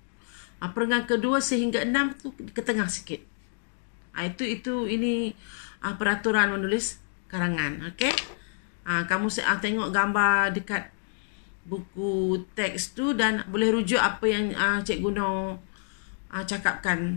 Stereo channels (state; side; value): silent; right; digital silence